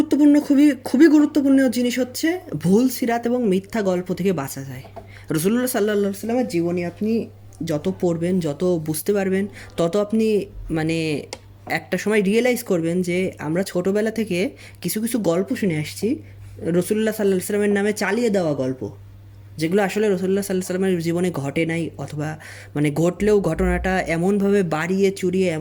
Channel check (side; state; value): both; identical; correlation 1.00